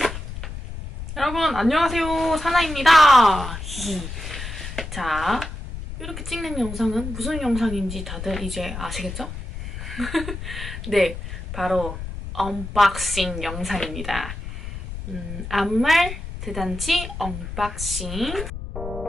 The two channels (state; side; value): noise; left; rumble, 8 dB below the sound